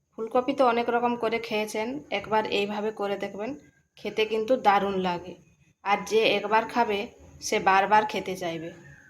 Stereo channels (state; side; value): identical; both; correlation 1.00